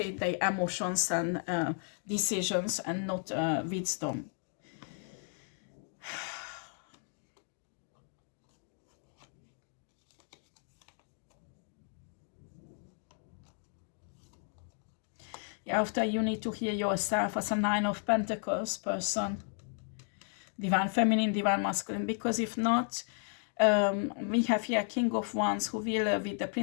their emotions and decisions and not wisdom. Yeah, after you need to hear yourself as a 9 of Pentacles person. Divine Feminine, Divine Masculine. Because if not, we have here King of Wands who will, with the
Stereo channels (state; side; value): silent; right; 55 dB below the other